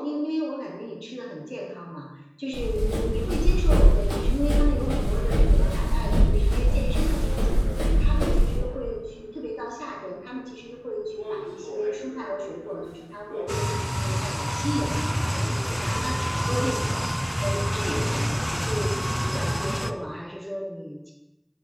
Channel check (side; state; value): both; identical; correlation 1.00